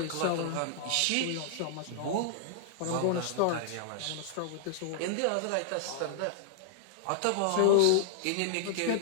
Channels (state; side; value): different; both; correlation -0.01